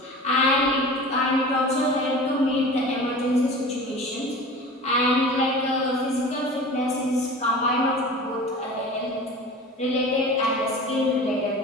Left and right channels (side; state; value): both; normal; correlation 0.37